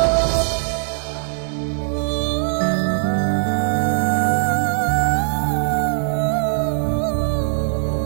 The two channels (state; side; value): silent; left; 65 dB below the other